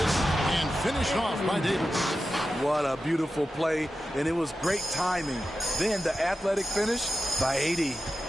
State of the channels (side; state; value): both; normal; correlation 0.92